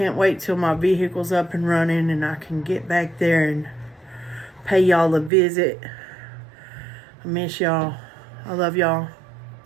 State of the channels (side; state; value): left; drops out; at 5.3 s